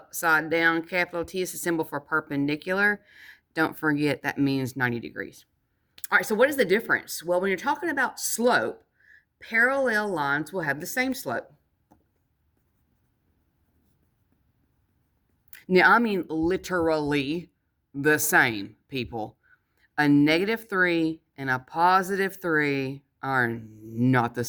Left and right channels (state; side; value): identical; both; correlation 1.00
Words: down capital T is a symbol for perpendicular. Don't forget that means 90 degrees. All right, so what is the difference? Well, when you're talking about slope, parallel lines will have the same slope. Now, I mean literally the same, people. A -3 and a +3 are not the